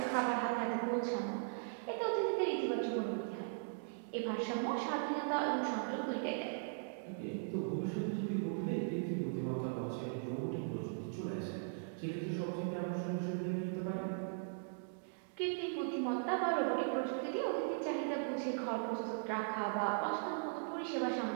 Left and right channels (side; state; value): left; silent; digital silence